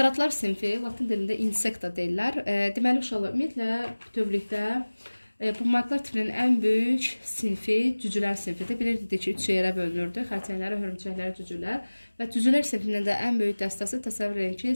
sinfi, latin dilində insekta deyirlər. Deməli, uşaqlar, ümumiyyətlə bütövlükdə bu maddelər tipinin ən böyük sinfi cücülər sinfidir. Bilirdik ki, 3 yerə bölünürdü. Xərçənglər, hörümçəklər, cücülər. Və cücülər sinfinin də ən böyük dəstəsi təsəvvür edin ki,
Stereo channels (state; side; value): inverted; both; correlation -1.00